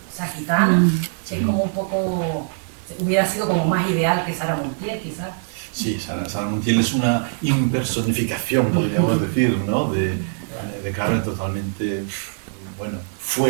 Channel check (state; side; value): silent; left; 64 dB below the other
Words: esa gitana, que es como un poco, hubiera sido como más ideal que Sara Montiel, quizás. Sí, Sara Montiel es una impersonificación, podríamos decir, ¿no?, de Carmen, totalmente, bueno,